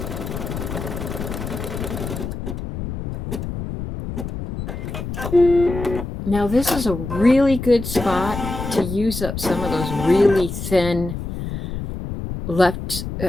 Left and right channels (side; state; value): left; noise; rumble, 6 dB below the sound